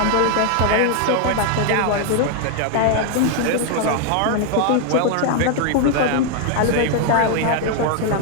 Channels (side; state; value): both; different; correlation 0.01